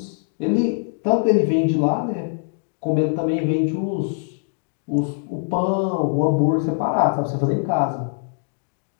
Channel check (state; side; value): silent; right; digital silence